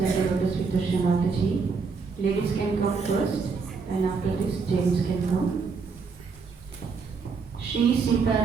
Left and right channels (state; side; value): quieter; left; 5.0 dB